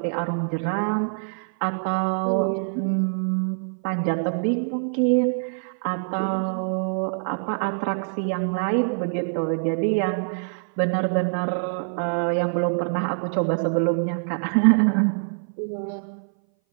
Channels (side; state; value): left; silent; 59 dB below the other